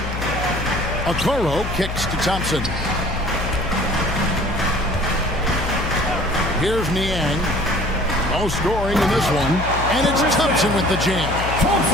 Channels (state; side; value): noise; left; hum, 5 dB below the sound